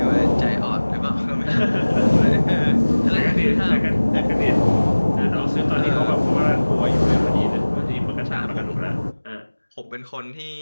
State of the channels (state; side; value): inverted; both; correlation -1.00